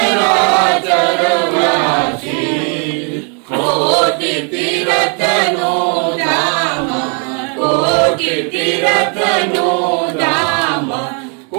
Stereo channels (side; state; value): left; quieter; 38.8 dB